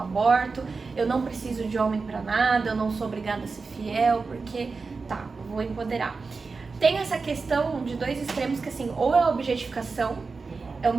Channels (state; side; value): quieter; left; 4.4 dB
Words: aborto, eu não preciso de homem pra nada, eu não sou obrigada a ser fiel, porque, vou empoderar. Tem essa questão de dois extremos que, assim, ou é a objetificação, é o